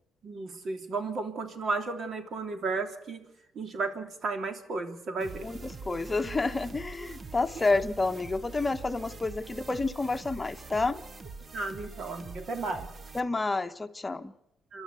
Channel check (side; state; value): both; normal; correlation 0.86